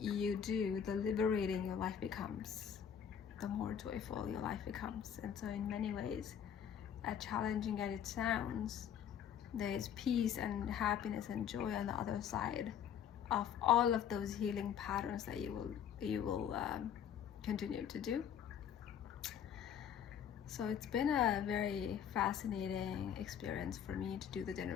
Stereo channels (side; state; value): right; quieter; 8.7 dB